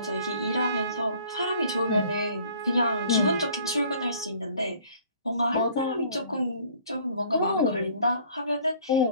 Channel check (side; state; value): both; inverted; correlation -0.55